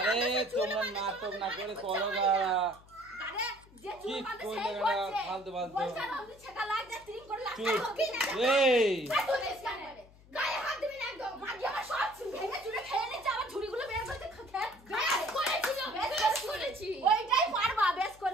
আরে তোমরা নাটক না করে করো গাড়া আরে যে কি চুল বাঁধে করলে সেই গাড়া করছে ফালতু ফালতু বলছে আমি ছেকা লাগ যা ট্রিম করে লাগ চুপ এই তুই দেশ কানে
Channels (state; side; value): noise; left; hum, 24 dB below the sound